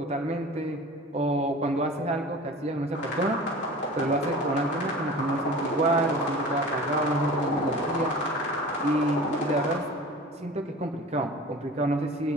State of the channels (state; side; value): normal; both; correlation 0.39